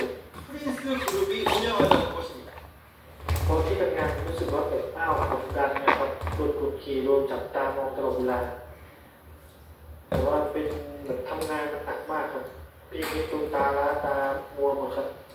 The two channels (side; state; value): both; identical; correlation 1.00